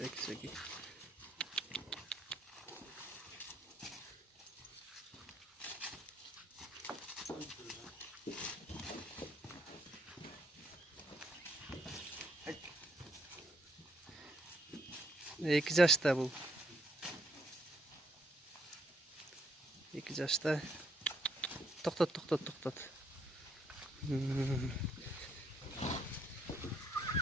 İki yaşta bu. 2 yaşta. Toktat.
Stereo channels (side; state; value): both; normal; correlation 0.72